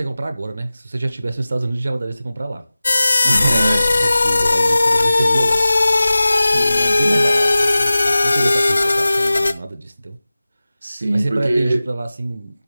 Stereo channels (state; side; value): inverted; both; correlation -0.97